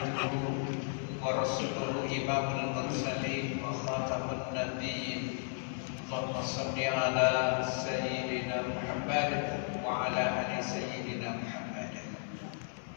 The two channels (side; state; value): right; silent; 55 dB below the other